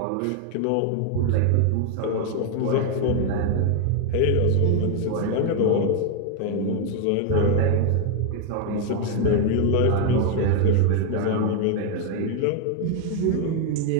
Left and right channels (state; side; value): different; both; correlation 0.01